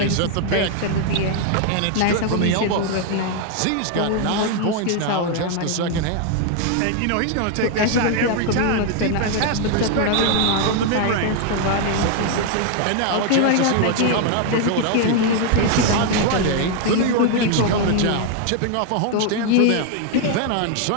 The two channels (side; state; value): both; different; correlation 0.01